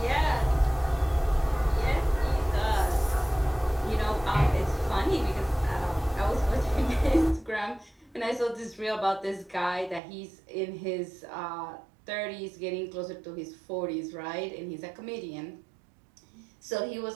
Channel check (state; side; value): drops out; left; at 10.0 s